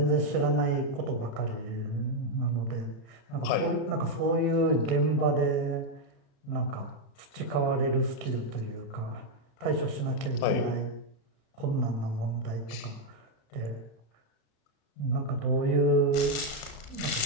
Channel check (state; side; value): late; right; 35 ms